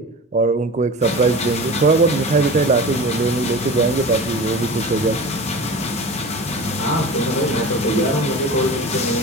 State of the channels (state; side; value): normal; both; correlation 0.34